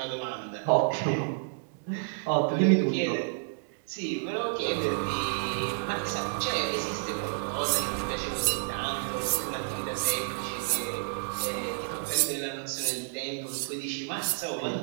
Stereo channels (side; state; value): left; silent; digital silence